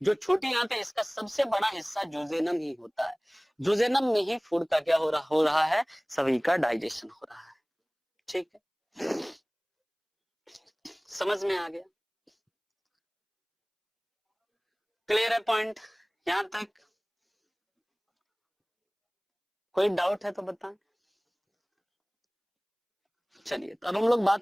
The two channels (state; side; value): identical; both; correlation 1.00